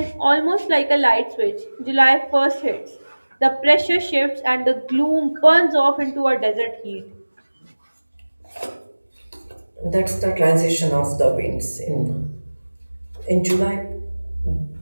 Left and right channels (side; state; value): both; inverted; correlation -1.00